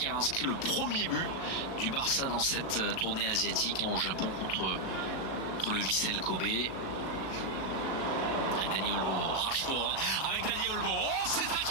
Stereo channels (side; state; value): right; late; 37 ms